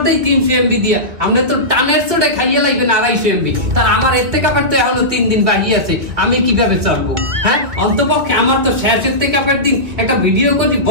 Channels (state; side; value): late; left; 2.0 ms